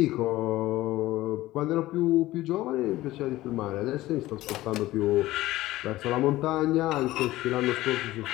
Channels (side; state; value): right; quieter; 16.7 dB